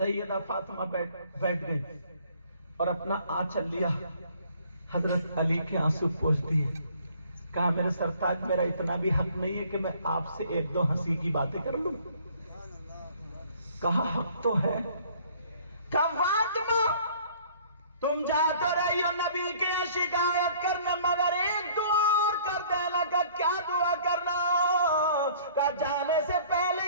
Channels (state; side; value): inverted; both; correlation -0.55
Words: فاطمہ بیٹھ گئی اور اپنا آنچل لیا, حضرت علی کے آنسو پوچھ دیے. کہا میرے سرتاج میرا اتنا بھی حق نہیں ہے کہ میں آپ سے ایک دو ہنسی کی باتیں کر لوں. کہا حق تو ہے. کہا فاطمہ تم جا تو رہی ہو نبی کی شکایت کرنے مگر ایک دعا اور کر دینا. کا کیا دعا کرنا؟ کا جانے سے